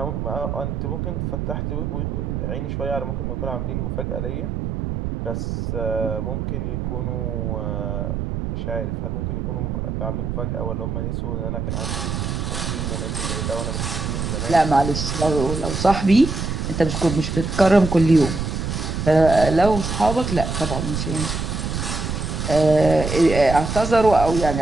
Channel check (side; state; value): right; noise; rumble, 3 dB below the sound